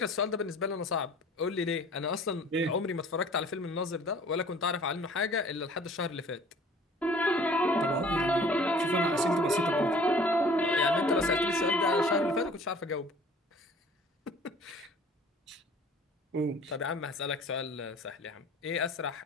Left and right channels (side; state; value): both; normal; correlation 0.50